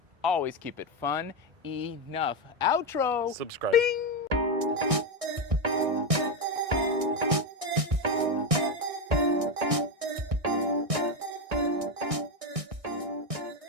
always keep it fun enough. Outro. Subscribe. Bing.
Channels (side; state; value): left; late; 1.6 ms